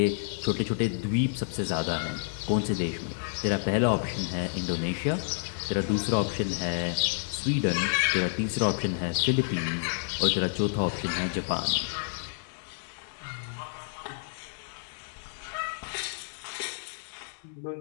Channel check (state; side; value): silent; right; 58 dB below the other